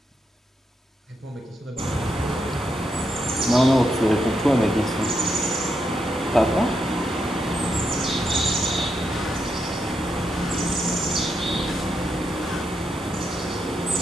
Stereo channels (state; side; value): normal; both; correlation 0.82